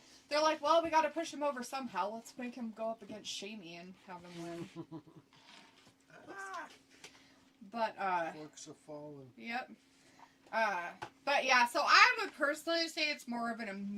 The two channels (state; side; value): identical; both; correlation 1.00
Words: like, well, we got to push him over somehow. Let's make him go up against Shamey and have him win. But, Forks are falling. yep. But yeah, so I would personally say it's more of an